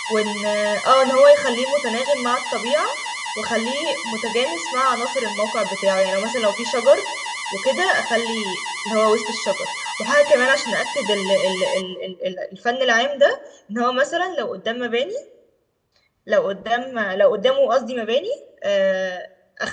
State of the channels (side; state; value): both; identical; correlation 1.00